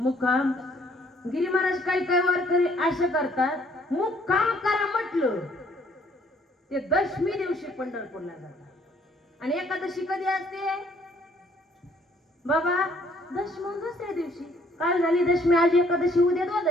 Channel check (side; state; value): both; normal; correlation 0.63